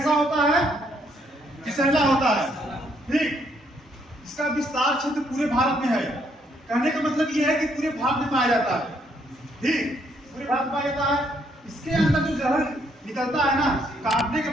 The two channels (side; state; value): both; normal; correlation 0.71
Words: होता है, फिसैला होता है। ठीक, इसका विस्तार क्षेत्र पूरे भारत में है। कहने का मतलब ये है कि पूरे भारत में पाया जाता है। ठीक, पूरे भारत में पाया जाता है। इसके अंदर जो जहर निकलता है ना, काटने के